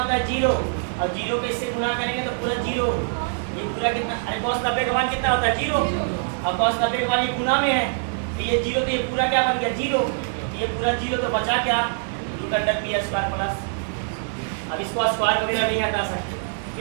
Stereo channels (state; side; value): silent; left; digital silence